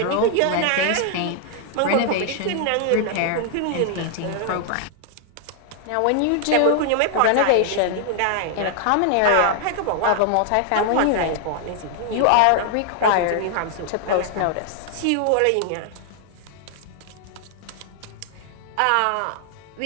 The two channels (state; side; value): different; both; correlation 0.00